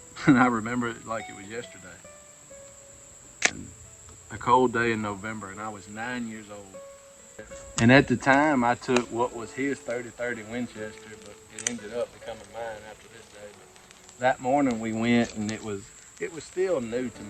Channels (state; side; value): identical; both; correlation 1.00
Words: And I remember it like it was yesterday. And a cold day in November, and I was 9 years old. And at the time, I took what was his 30-30 Winchester, but it ended up becoming mine after this day. But that morning we went, and it was still new to